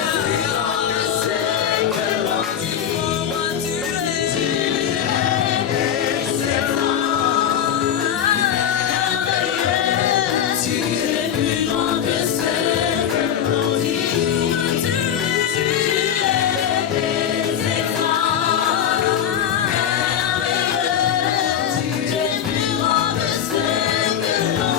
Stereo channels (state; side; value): quieter; right; 9.3 dB